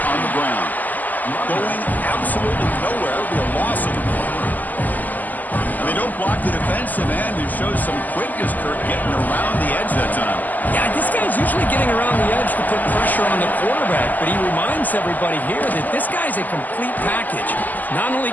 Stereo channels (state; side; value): late; right; 0.083 ms